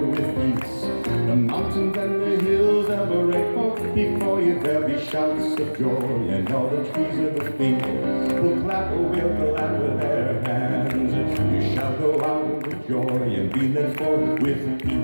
peace. The mountains and the hills ever for before you. There'll be shouts of joy, and all the trees of the field will clap or will clap with their hands. You shall go out with joy and be led forth with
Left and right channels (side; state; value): both; inverted; correlation -1.00